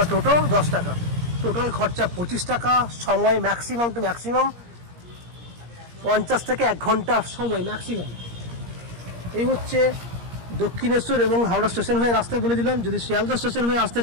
টোটো 10 টাকা। টোটাল খরচা 25 টাকা। সময় ম্যাক্সিমাম টু ম্যাক্সিমাম 50 থেকে 1 ঘন্টা সময় ম্যাক্সিমাম। এই হচ্ছে দক্ষিণেশ্বর এবং হাওড়া স্টেশন হয়ে রাস্তা বলে দিলাম। যদি শিয়ালদা স্টেশন হয়ে আসতে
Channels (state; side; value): late; left; 17 ms